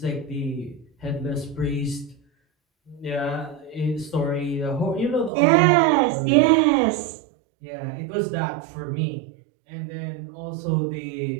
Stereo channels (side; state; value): left; drops out; at 5.3 s